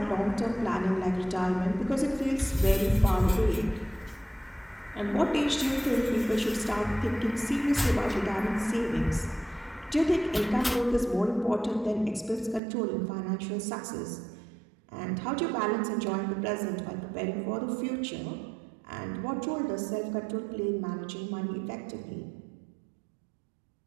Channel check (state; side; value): drops out; left; at 12.6 s